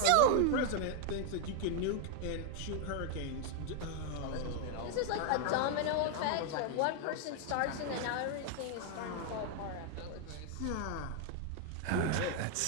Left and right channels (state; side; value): different; both; correlation 0.00